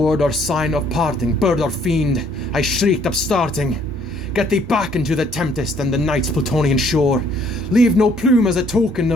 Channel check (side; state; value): both; normal; correlation 0.63